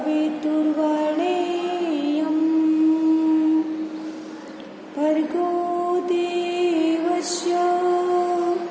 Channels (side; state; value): both; identical; correlation 1.00